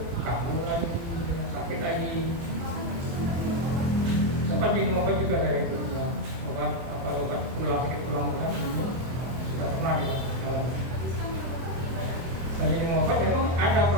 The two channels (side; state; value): left; late; 23 ms